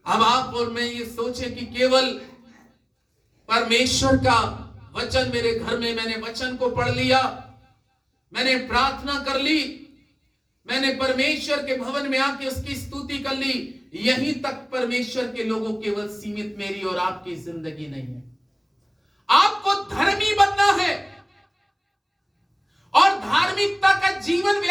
अब आप और मैं ये सोचें कि केवल परमेश्वर का वचन मेरे घर में, मैंने वचन को पढ़ लिया, मैंने प्रार्थना कर ली, मैंने परमेश्वर के भवन में आके उसकी स्तुति कर ली, यहीं तक परमेश्वर के लोगों केवल सीमित मेरी और आपकी जिंदगी नहीं है। आपको धर्मी बनना है और धार्मिकता का जीवन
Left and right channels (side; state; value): both; identical; correlation 1.00